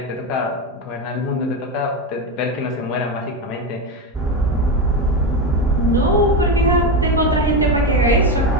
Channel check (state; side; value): normal; both; correlation 0.15